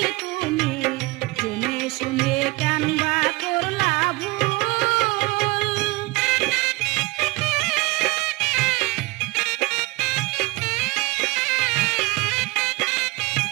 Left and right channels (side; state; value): left; quieter; 23.6 dB